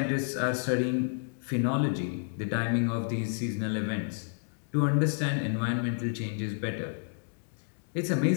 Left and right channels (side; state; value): right; silent; 58 dB below the other